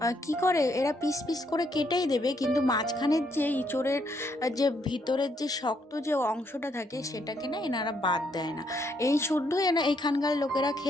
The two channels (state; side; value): normal; both; correlation 0.73